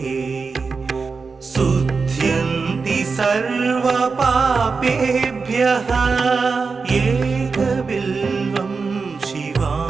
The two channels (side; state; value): left; quieter; 4.7 dB